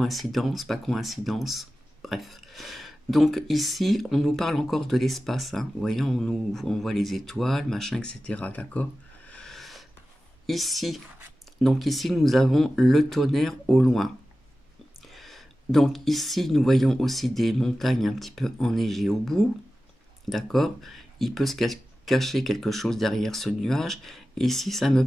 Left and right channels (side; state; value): both; normal; correlation 0.95